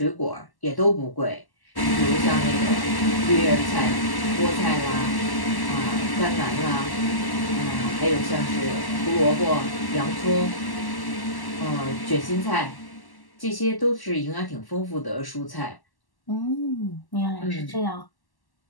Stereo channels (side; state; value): right; late; 1.1 ms